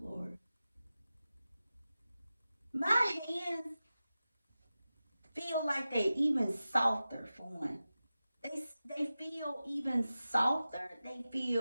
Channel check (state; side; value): inverted; both; correlation -0.94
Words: Lord. My hands feel like they even softer for one. They feel even softer. They